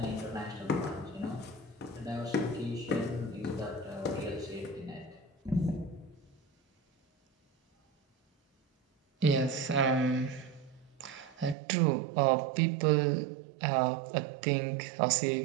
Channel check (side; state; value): left; drops out; at 11.6 s